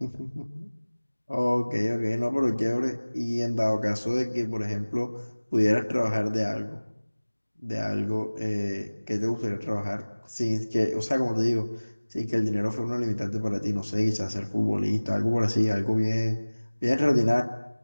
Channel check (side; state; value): both; inverted; correlation -1.00